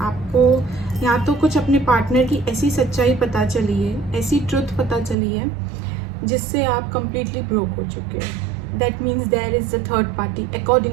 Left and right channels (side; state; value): left; drops out; at 5.2 s